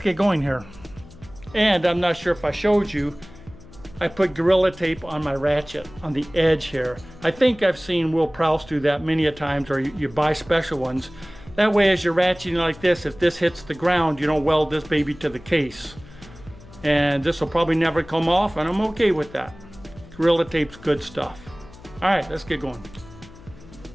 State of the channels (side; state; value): left; noise; hum, 20 dB below the sound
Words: get going here. And I'm not sure if I showed you, I put Gorilla Tape on my ratchet on the edge here. I think I've seen Will Prowse do that many a times, or you buy special ones. That way, as you're ratcheting like this, if this hits the ground, you don't weld this baby to the case. And this will probably never come off, and I'm okay with that. Gorilla Tape's good stuff. All right, let's get going.